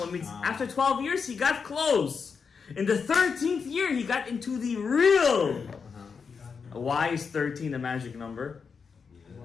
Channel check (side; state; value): right; quieter; 5.7 dB